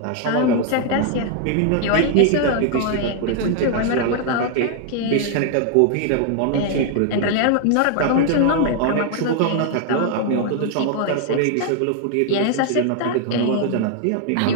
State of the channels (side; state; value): both; different; correlation 0.00